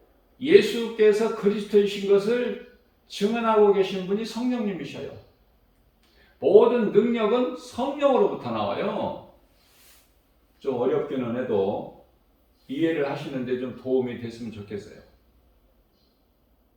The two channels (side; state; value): both; identical; correlation 1.00